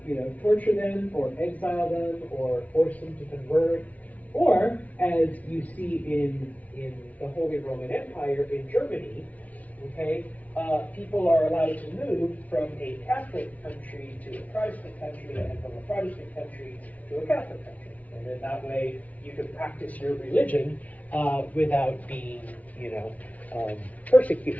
torture them or exile them or force them to convert, or, as you see in the Holy Roman Empire in Germany, okay, people are allowed to move from a Catholic country to a Protestant country, and from a Protestant country to a Catholic country. And then that way you can practice your religion without being,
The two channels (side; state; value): right; late; 0.071 ms